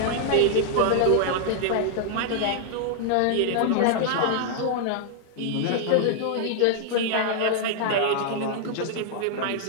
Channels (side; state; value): both; different; correlation 0.00